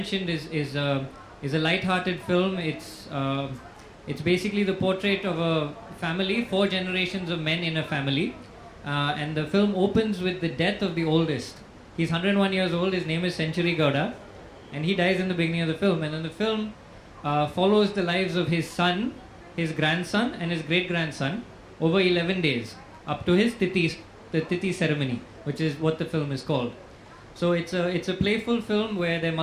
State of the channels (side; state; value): both; identical; correlation 1.00